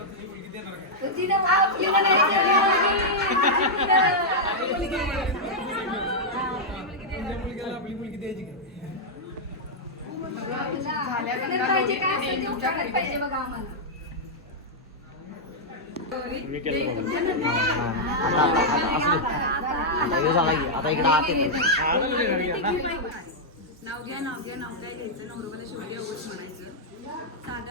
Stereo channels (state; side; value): normal; both; correlation -0.05